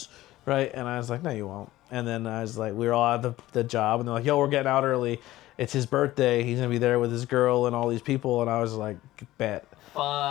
right?" And I was like, "No, you won't." And then I was like, we were all at the job, and they're like, "Yo, we're getting out early. It's his birthday. He's gonna be there with his girl and all these people." And I was like, "Bet."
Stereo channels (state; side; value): quieter; right; 16.1 dB